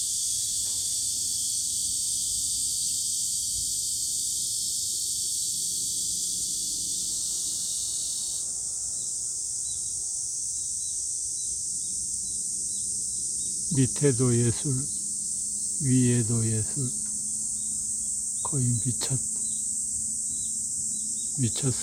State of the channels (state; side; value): identical; both; correlation 1.00